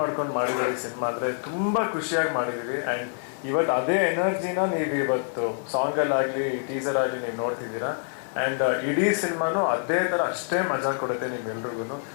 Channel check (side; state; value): right; silent; digital silence